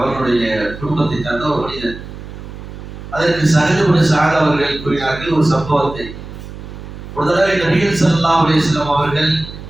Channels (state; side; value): noise; right; hum, 13 dB below the sound